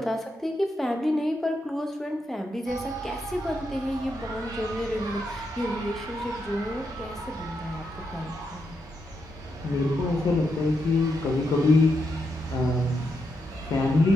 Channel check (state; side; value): normal; both; correlation 0.83